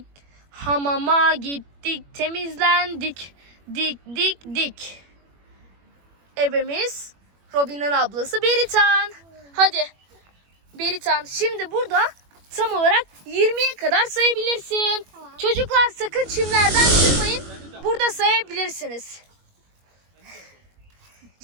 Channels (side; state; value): left; late; 21 ms